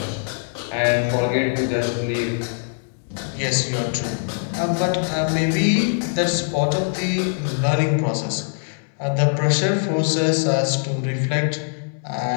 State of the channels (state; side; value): silent; right; 64 dB below the other